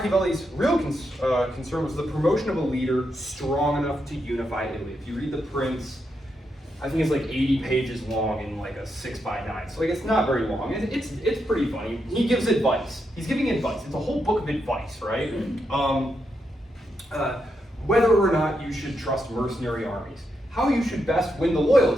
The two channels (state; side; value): normal; both; correlation 0.83